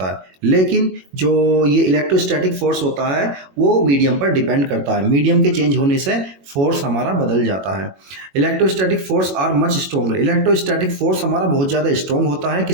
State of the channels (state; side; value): late; left; 21 ms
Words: है। लेकिन जो ये इलेक्ट्रोस्टैटिक फोर्स होता है वो मीडियम पर डिपेंड करता है। मीडियम के चेंज होने से फोर्स हमारा बदल जाता है। Electrostatic force are much stronger. Electrostatic force हमारा बहुत ज़्यादा स्ट्रॉन्ग होता है,